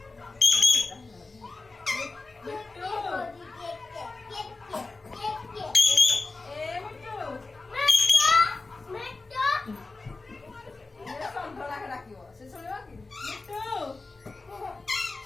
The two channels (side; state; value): right; quieter; 3.6 dB